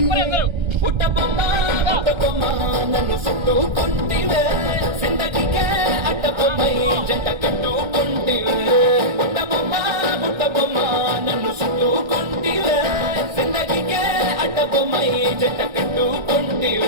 పుట్టబొమ్మ పుట్టబొమ్మ నన్ను చుట్టుకుంటివే జిందగీకే అడ్డబొమ్మై జంట కట్టుకుంటివే పుట్టబొమ్మ పుట్టబొమ్మ నన్ను చుట్టుకుంటివే జిందగీకే అడ్డబొమ్మై జంట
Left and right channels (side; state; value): left; late; 1.3 ms